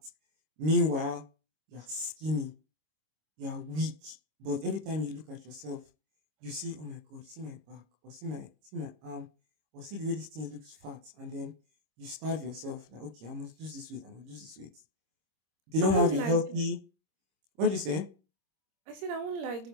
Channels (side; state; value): left; late; 26 ms